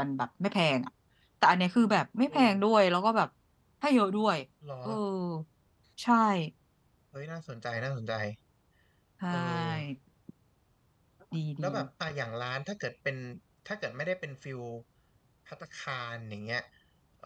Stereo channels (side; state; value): both; identical; correlation 1.00